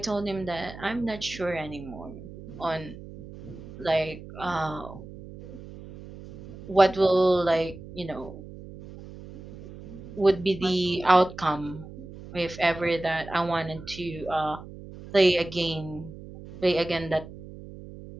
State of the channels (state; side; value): noise; right; hum, 15 dB below the sound